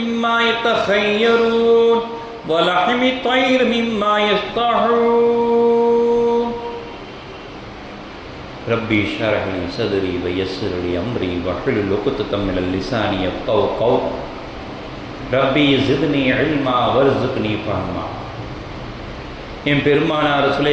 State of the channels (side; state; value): both; identical; correlation 1.00